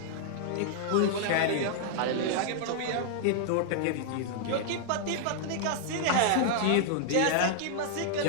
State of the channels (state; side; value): different; both; correlation -0.01